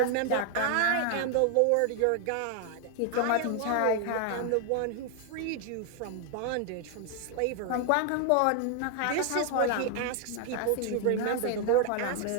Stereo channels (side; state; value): both; different; correlation 0.00